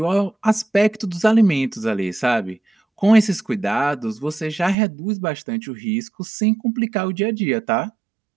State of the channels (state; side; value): drops out; left; at 4.8 s